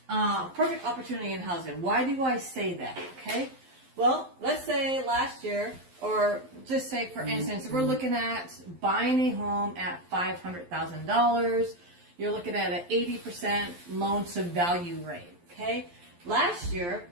opportunity in housing. Why do I say that? Okay. Well, let's say last year, or just say for instance, we're looking at buying a home at $500,000. You're looking at an 80% loan to value rate. Okay. Last year,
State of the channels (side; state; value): left; late; 11 ms